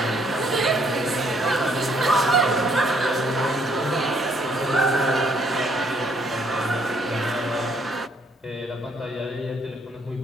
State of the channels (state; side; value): normal; both; correlation 0.67